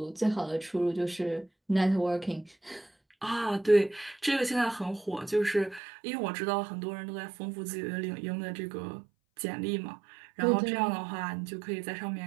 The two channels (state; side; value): drops out; left; at 5.8 s